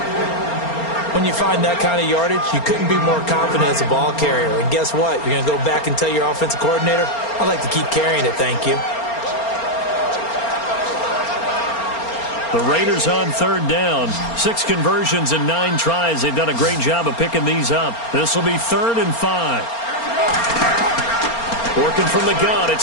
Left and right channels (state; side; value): late; right; 4.3 ms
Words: When you find that kind of yardage, you couldn't be more confident as a ball carrier. And guess what? You're going to go back and tell your offensive coordinator, I'd like to keep carrying it, thank you. The Raiders on third down. 6 conversions and 9 tries. They've done a great job of picking these up. This will be 3rd and 5. Working from the gun,